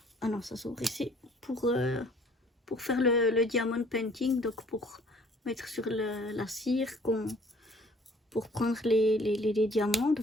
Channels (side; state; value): both; normal; correlation 0.56